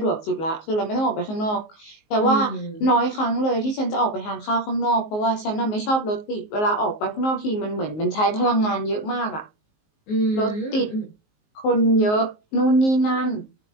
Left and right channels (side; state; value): right; late; 19 ms